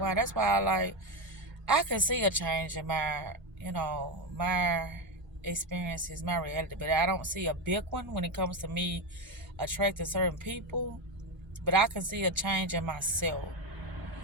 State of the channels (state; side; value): normal; both; correlation 0.12